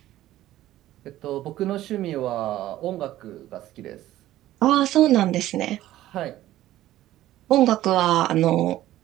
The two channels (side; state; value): left; quieter; 14.4 dB